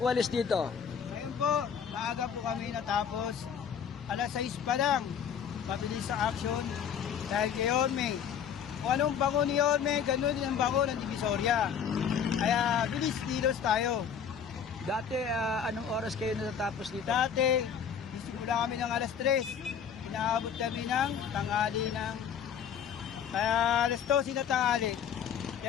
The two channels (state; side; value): quieter; right; 7.7 dB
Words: dito? Ngayon po, maaga po kami natapos. Alas 6 pa lang. Mabilis sa action. Dahil kay Orme. Kung anong bango ni Orme, ganun din ang bango ng Divisoria. Kaya bilis kilos tayo. Dati, anong oras kayo natapos dito? Dati, simula kami ng alas 3. Inaabot kami ng tanghali ng... Kaya alas 12 na tanghali.